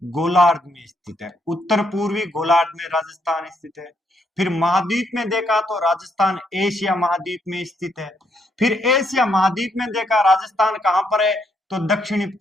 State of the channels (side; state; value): both; normal; correlation 0.75